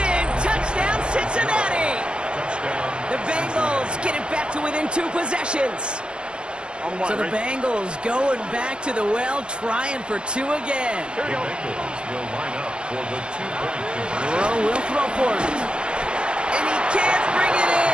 Touchdown, Cincinnati. Touchdown. The Bengals get it back to within 2 possessions. So the Bengals going back to the well, trying for 2 again. The Bengals will line up for the 2-point conversion. Burrow will throw for it. And he can't bring it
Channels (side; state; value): left; late; 0.054 ms